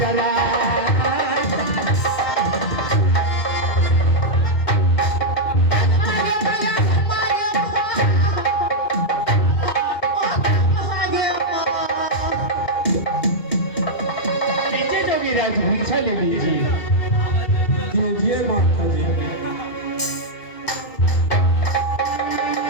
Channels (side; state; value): right; late; 2.8 ms